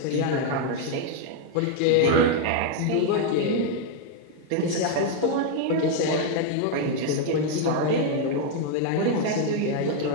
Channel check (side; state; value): both; different; correlation 0.00